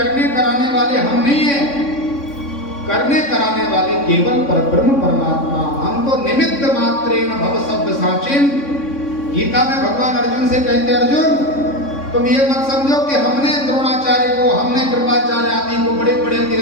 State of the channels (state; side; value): late; right; 3.6 ms